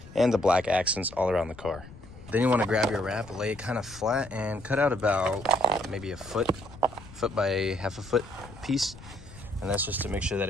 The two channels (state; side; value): noise; left; rumble, 18 dB below the sound